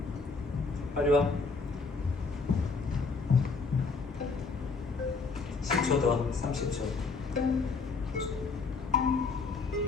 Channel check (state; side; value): quieter; right; 4.3 dB